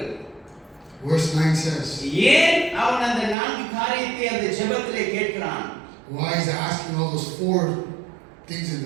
Verse 9 says. ஏன் அவன் அந்த 4 காரியத்தை அந்த ஜெபத்திலே கேட்கிறான்? Why is he asking all those 4 things in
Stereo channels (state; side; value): drops out; left; at 3.4 s